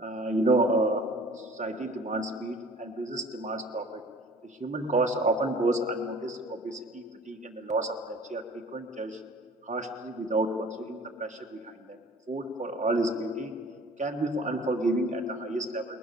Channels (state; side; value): normal; both; correlation 0.48